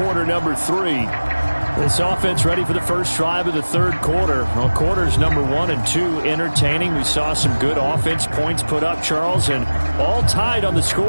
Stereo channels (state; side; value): inverted; both; correlation -1.00